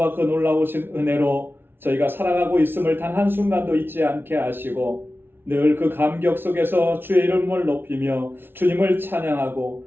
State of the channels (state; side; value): late; left; 0.11 ms